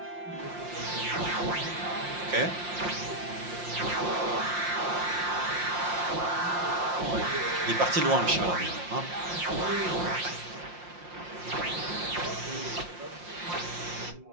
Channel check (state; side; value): late; left; 5.7 ms